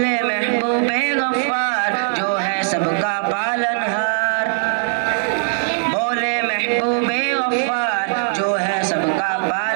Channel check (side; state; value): left; silent; digital silence